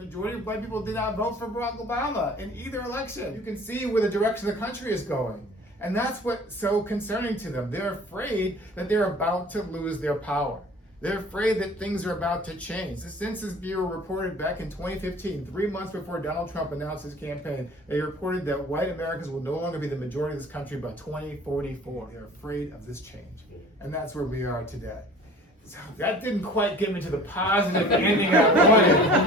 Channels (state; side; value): normal; both; correlation 0.46